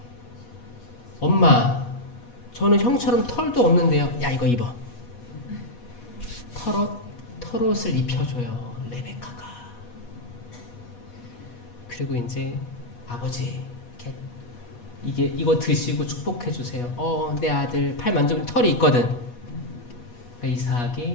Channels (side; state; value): right; late; 8.3 ms